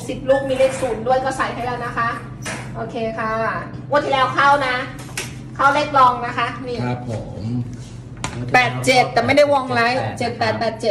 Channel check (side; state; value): both; identical; correlation 1.00